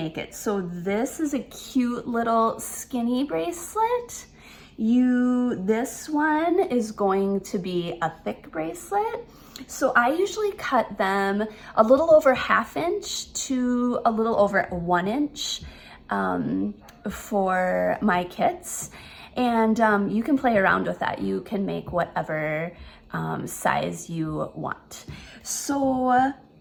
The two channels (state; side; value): identical; both; correlation 1.00